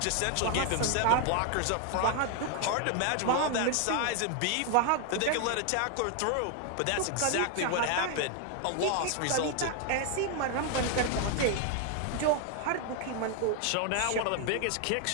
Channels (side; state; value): both; different; correlation 0.00